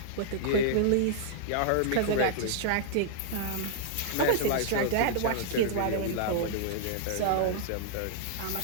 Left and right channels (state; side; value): different; both; correlation -0.01